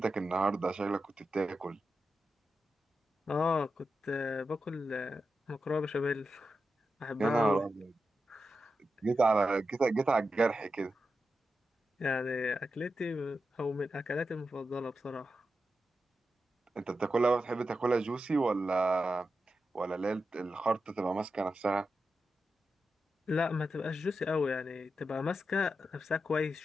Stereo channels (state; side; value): normal; both; correlation 0.89